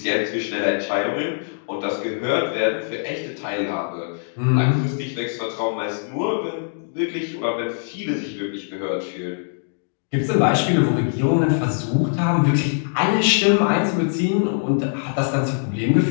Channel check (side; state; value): right; silent; digital silence